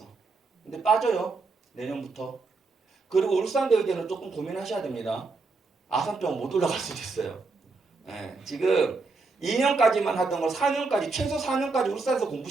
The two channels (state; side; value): quieter; left; 4.0 dB